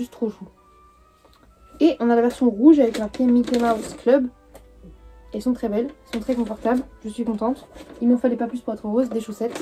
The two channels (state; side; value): identical; both; correlation 1.00